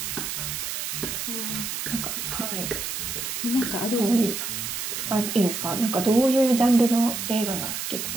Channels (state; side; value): noise; right; hiss, 4 dB below the sound